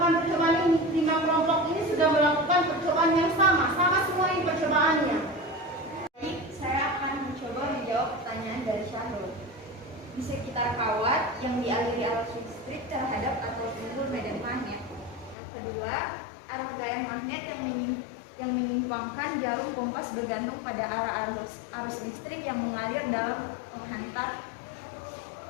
percobaan ini. 5 kelompok ini sudah melakukan percobaan yang sama semua ini percobaannya. Baik, saya akan mencoba menjawab pertanyaan dari Syahrul. Di sekitar kawat yang dialiri arus listrik terhadap atau timbul medan magnet. Yang kedua, arah gaya magnet yang menyimpangkan jarum kompas bergantung pada arus listrik yang mengalir dalam penghantar.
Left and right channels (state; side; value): drops out; right; at 15.4 s